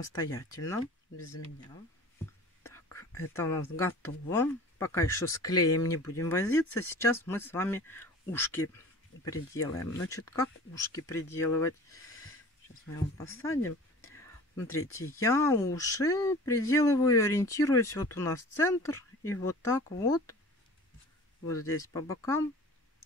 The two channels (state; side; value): normal; both; correlation 0.42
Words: без меня. Так, это у нас готово. Пока еще с клеем не будем возиться. Сейчас мы с вами ушки приделаем. Значит, как ушки приделывать? Сейчас мы его посадим. Смотрите, я уши приделываю, ориентируюсь. Вот у нас центр. И вот так вот. Вот здесь по бокам